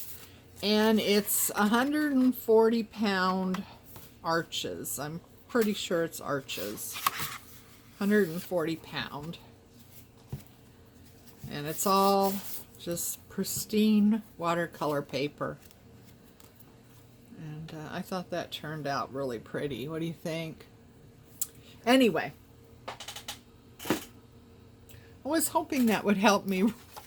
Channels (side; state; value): both; identical; correlation 1.00